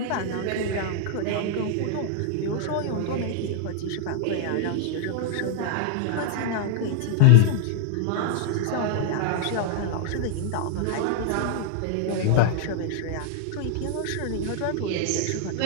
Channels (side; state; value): both; different; correlation 0.00